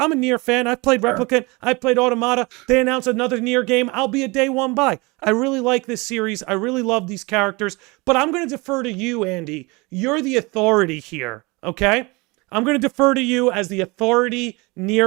a Nier fan. I've played Replicant. I've played Automata. They announced another Nier game. I'll be a day one buy. I really like this series. I really love these characters. But I'm going to defer to you, Andy. You're the authority here, okay? I'm going to defer to you as the authority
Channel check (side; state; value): left; quieter; 25.7 dB